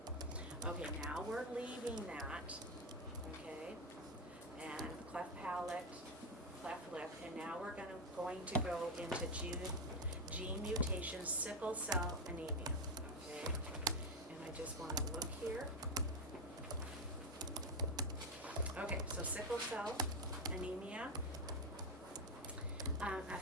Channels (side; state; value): both; normal; correlation 0.09